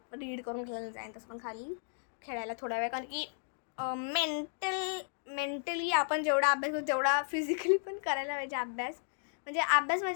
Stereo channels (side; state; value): right; silent; digital silence